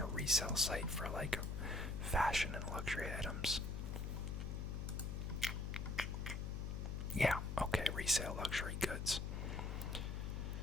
resale site for like fashion and luxury items? Yeah, okay, resale luxury goods.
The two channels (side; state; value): left; noise; hum, 2 dB below the sound